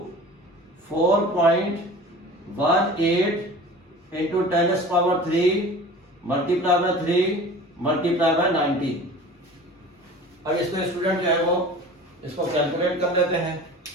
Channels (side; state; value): both; normal; correlation 0.40